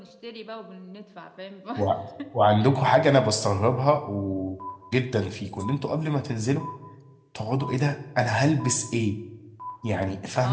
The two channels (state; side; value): identical; both; correlation 1.00